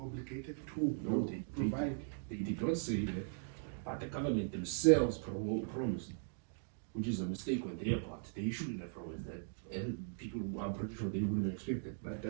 obligated to No, provide? They did not say that, but the government themselves promised, which is a mistake on their part. They shouldn't have promised that, and people are pretty sure they wouldn't expect it. But it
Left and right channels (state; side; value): silent; left; digital silence